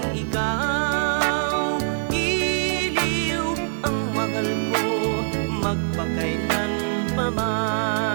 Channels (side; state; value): left; silent; digital silence